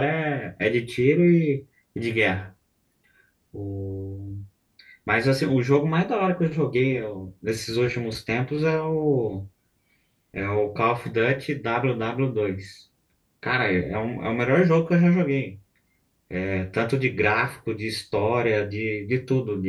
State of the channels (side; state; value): both; identical; correlation 1.00